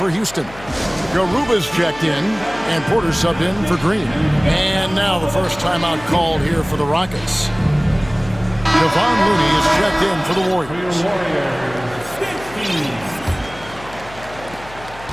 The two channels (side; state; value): left; noise; hum, 18 dB below the sound